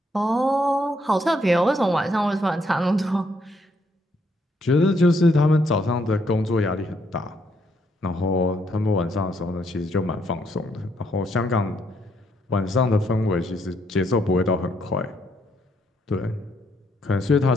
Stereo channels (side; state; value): both; normal; correlation 0.73